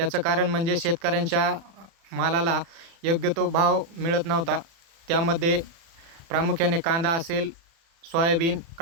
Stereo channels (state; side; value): late; left; 36 ms